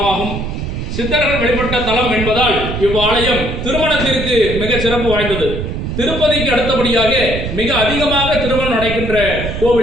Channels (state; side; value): noise; right; rumble, 5 dB below the sound